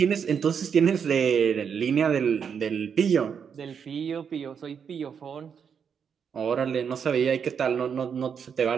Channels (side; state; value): left; quieter; 7.0 dB